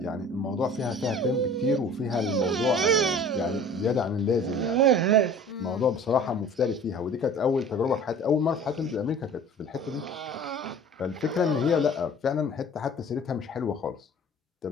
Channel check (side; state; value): both; normal; correlation 0.45